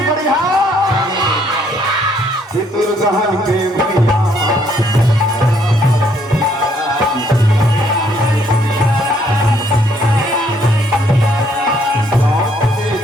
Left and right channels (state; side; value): normal; both; correlation 0.67